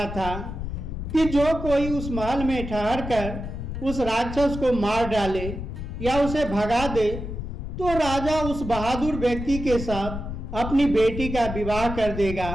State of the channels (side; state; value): left; noise; rumble, 7 dB below the sound